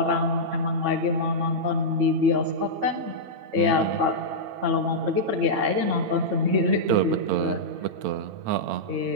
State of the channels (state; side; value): late; left; 8.9 ms